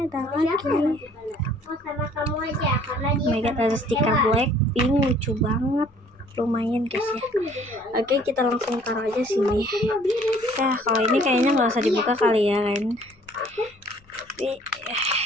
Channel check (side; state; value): left; noise; rumble, 29 dB below the sound